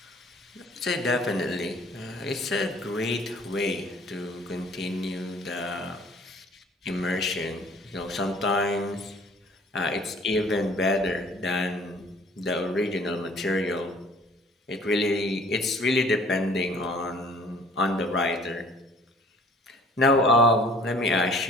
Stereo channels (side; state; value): both; normal; correlation 0.53